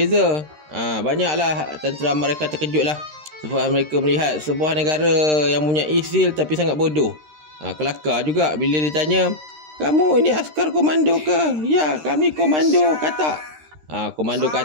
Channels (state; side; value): late; left; 13 ms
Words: Banyaklah tentera mereka terkejutlah sebab mereka melihat sebuah negara yang punya skill tapi sangat bodoh. Kelakar juga bila ditanya, kamu ini askar komando ke? Ya, kami komando katak. Komando